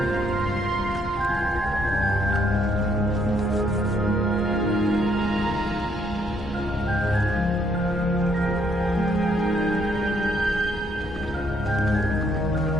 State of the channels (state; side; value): normal; both; correlation 0.71